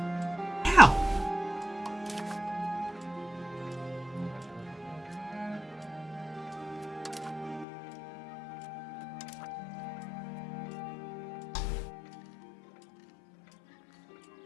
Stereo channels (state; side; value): drops out; right; at 7.7 s